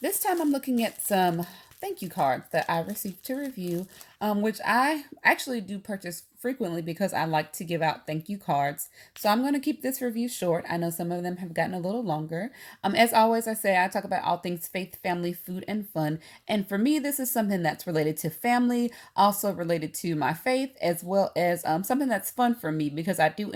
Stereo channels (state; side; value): identical; both; correlation 1.00